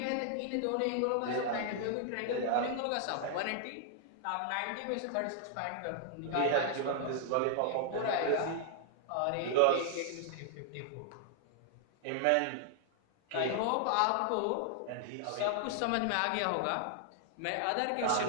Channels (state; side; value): different; both; correlation 0.00